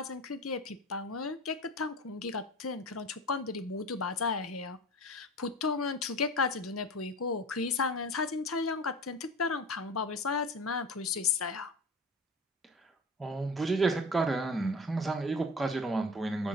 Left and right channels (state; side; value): normal; both; correlation 0.35